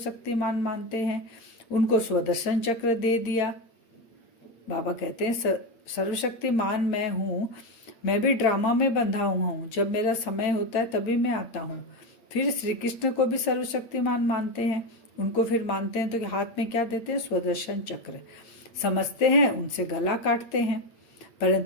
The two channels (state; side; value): late; right; 9.0 ms